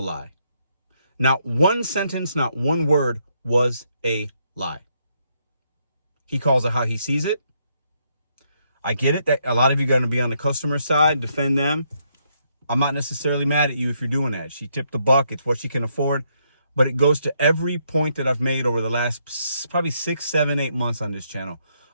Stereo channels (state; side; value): inverted; both; correlation -0.75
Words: Not one sentence, not one word was a lie. He calls it how he sees it. I get it that a lot of you are going to be on the customer side, defend them. I'm not necessarily mad at you if you're doing that. She tipped the buck. It's what she can afford. But it goes to every point that I've made over the last probably 6, 7, 8 months on this channel